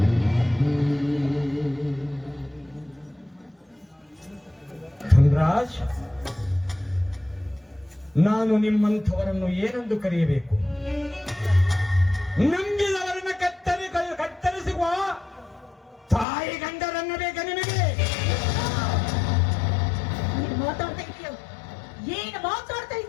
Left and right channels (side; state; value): right; drops out; at 16.2 s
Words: ಧನ್ರಾಜ್, ನಾನು ನಿಮ್ಮಂಥವರನ್ನು ಏನೆಂದು ಕರೆಯಬೇಕು? ನಂಬಿದವರನ್ನು ಕತ್ತರಿಸುವ ತಾಯಿ ಗಂಡರನ್ನು ಬೇಕಾ ನಿಮಗೆ? ಏನು ಮಾತಾಡ್ತಾ